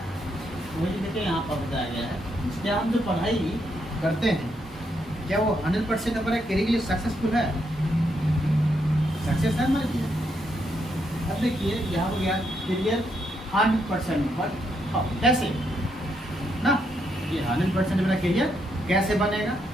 तो वही देखिए यहाँ पर बताया गया है, क्या हम जो पढ़ाई करते हैं क्या वो 100% हमारे करियर के लिए सक्सेसफुल है, सक्सेस है हमारे लिए। अब देखिए यहाँ हो गया करियर 100%, बट कैसे ना, ये 100% मेरा करियर कैसे बनेगा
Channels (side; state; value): both; normal; correlation 0.78